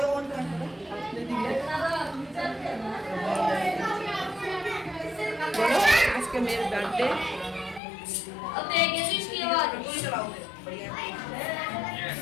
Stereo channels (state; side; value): drops out; right; at 7.8 s